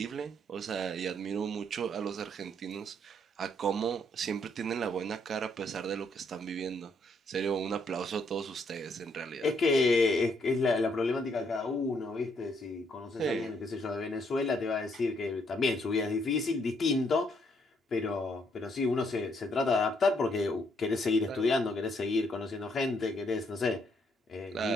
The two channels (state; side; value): normal; both; correlation 0.72